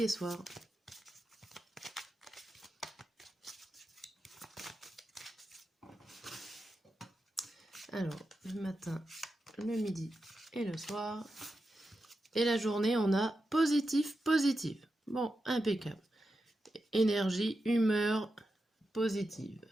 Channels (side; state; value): both; normal; correlation 0.89